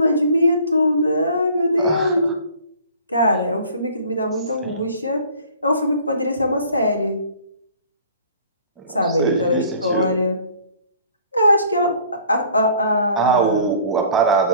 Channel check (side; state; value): both; inverted; correlation -0.51